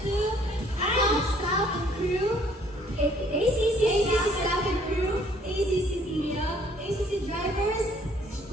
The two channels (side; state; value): both; normal; correlation 0.61